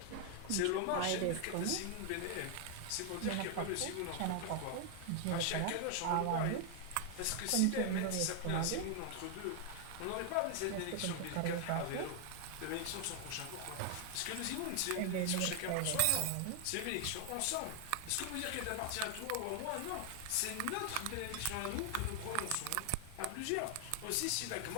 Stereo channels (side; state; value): both; different; correlation 0.00